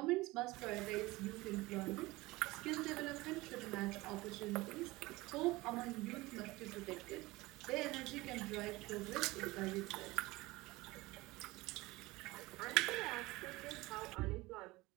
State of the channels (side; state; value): left; quieter; 20.8 dB